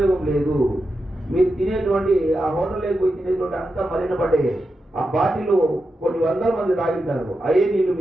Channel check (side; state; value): both; normal; correlation 0.88